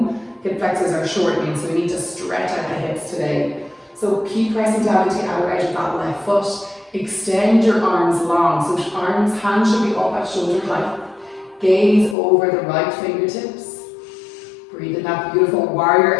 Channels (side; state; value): right; drops out; at 12.2 s